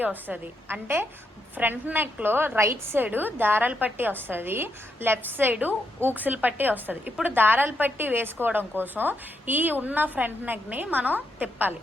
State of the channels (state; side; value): normal; both; correlation 0.80